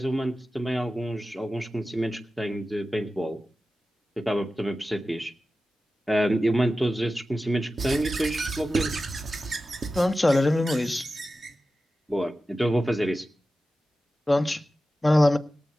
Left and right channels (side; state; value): both; normal; correlation 0.94